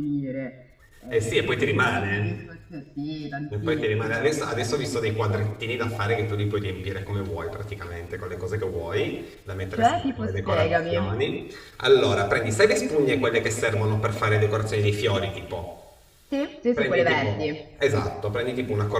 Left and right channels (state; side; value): identical; both; correlation 1.00